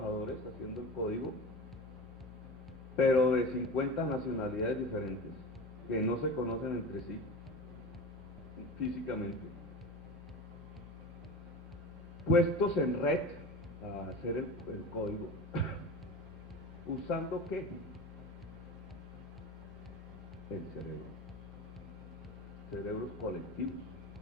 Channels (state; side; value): normal; both; correlation 0.31